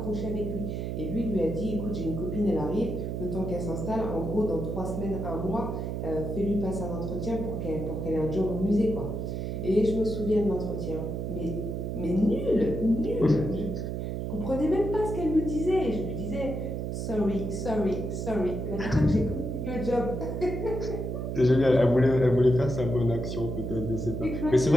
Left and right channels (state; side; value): noise; right; hum, 3 dB below the sound